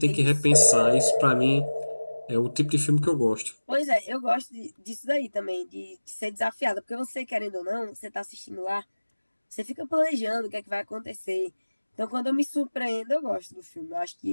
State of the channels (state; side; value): inverted; both; correlation -1.00